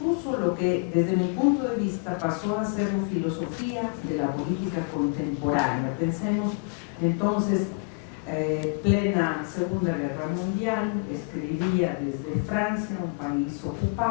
lo que, desde mi punto de vista, pasó a ser la filosofía de la política contemporánea. Pensemos entonces, plena Segunda Guerra Mundial, escribía desde Francia, un país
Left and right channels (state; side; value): quieter; right; 33.1 dB